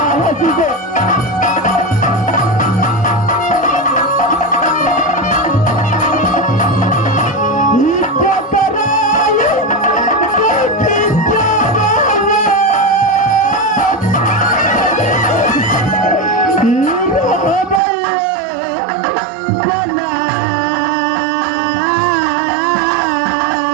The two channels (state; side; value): drops out; left; at 17.8 s